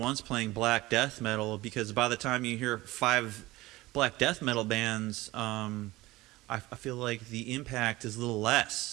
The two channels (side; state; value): left; quieter; 19.1 dB